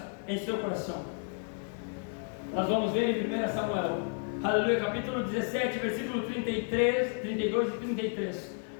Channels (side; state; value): right; silent; 57 dB below the other